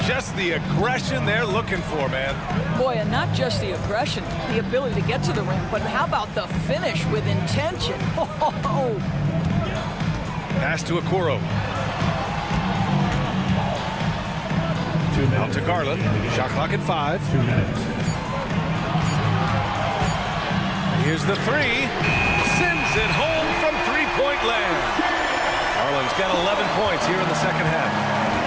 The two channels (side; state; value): both; identical; correlation 1.00